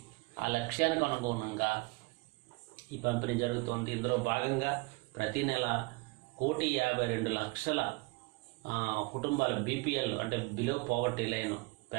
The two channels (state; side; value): quieter; left; 26.2 dB